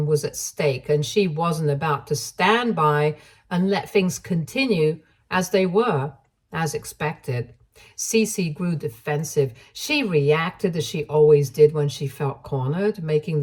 was at stake, and she wasn't about to stand by and let things continue as they were, as expected. Cece grew defensive. She reacted as she always did when she felt cornered, making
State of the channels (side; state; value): both; identical; correlation 1.00